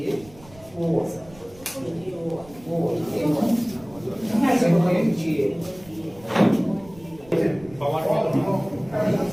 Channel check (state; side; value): noise; right; rumble, 23 dB below the sound